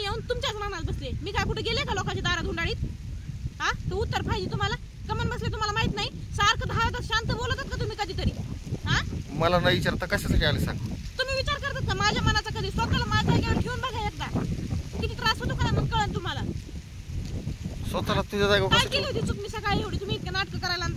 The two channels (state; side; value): identical; both; correlation 1.00